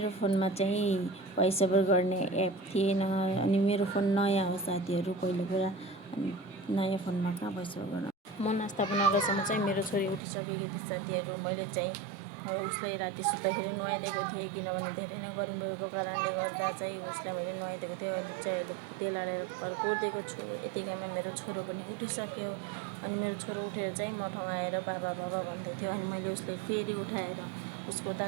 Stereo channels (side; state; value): left; drops out; at 10.2 s